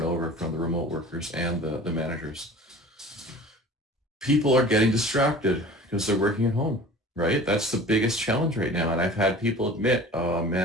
over from the remote workers and the managers. People are getting distracted because they're working at home, right? That's the biggest challenge right now. And I've had people admit, oh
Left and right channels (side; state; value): both; normal; correlation 0.42